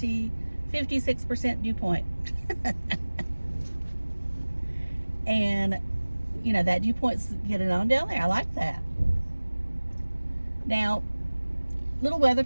56% dew point. And you know, that dew point's getting on down there. I like that. Now, little weather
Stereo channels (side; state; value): both; inverted; correlation -1.00